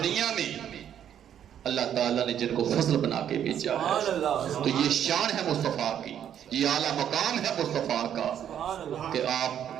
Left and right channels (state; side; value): quieter; left; 9.7 dB